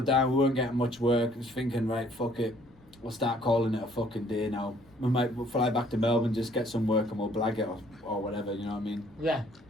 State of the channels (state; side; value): noise; left; rumble, 27 dB below the sound